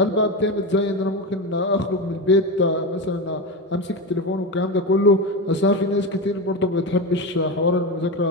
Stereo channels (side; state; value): both; normal; correlation 0.18